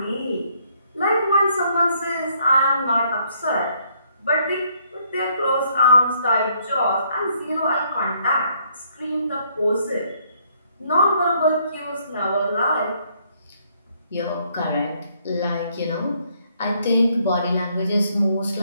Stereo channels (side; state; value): both; inverted; correlation -0.69